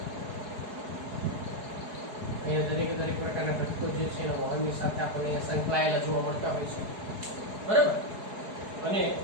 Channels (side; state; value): left; late; 4.7 ms